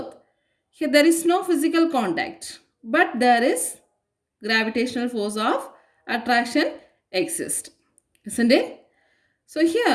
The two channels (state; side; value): identical; both; correlation 1.00